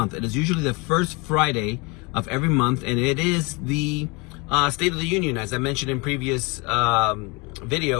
It is usually the first Friday of every month, and it is the State of the Union, as I mentioned in previous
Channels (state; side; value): quieter; right; 28.0 dB